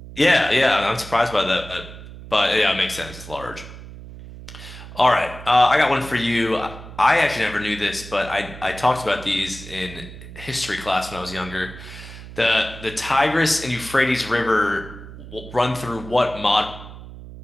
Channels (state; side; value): noise; right; hum, 14 dB below the sound